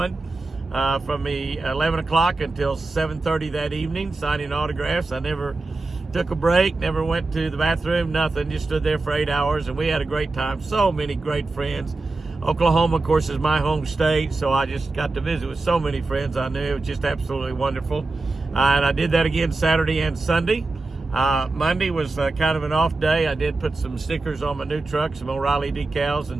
from the 11 o'clock until 7:30 that evening, signing autographs. I never took a break, never went to the bathroom, nothing. Just stood there for 8 hours, and we had a great time. So many great friends. Oklahoma, of course, is my home state, so I just got to visit with so many friends I knew. It was just absolutely wonderful. And I did that again Saturday and Sunday. Monday was kind of an off day. I did put some stickers on my new truck, some O'Reilly decals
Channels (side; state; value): left; quieter; 3.4 dB